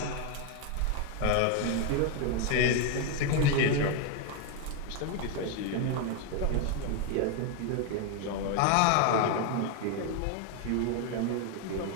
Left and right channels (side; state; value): both; different; correlation 0.01